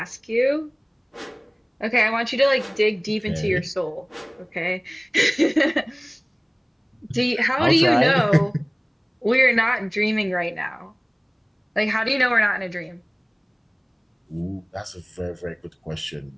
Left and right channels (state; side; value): identical; both; correlation 1.00